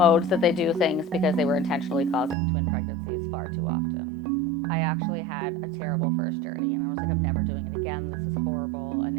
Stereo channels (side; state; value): left; drops out; at 2.4 s